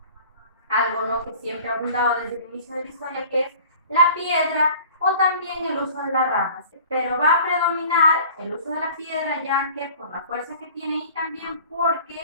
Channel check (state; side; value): inverted; both; correlation -0.46